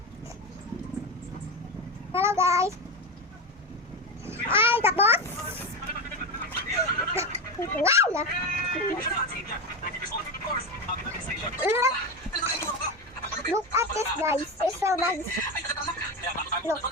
Hello guys. Ay, tapos. Wow! Look at this guys. It's so nice. Look.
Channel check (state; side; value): normal; both; correlation 0.17